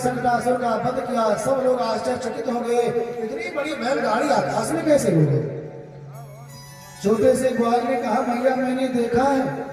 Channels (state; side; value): identical; both; correlation 1.00